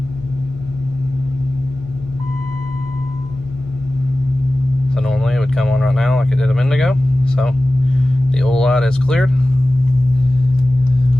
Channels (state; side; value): normal; both; correlation 0.96